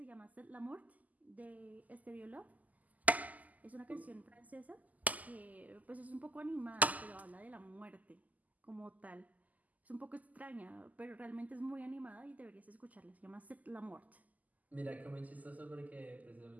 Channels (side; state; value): left; late; 0.078 ms